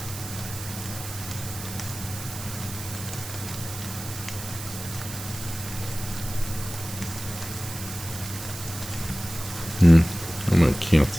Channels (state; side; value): noise; right; hiss, 10 dB below the sound